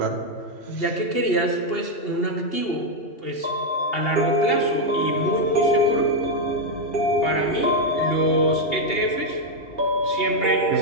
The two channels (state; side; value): late; right; 2.8 ms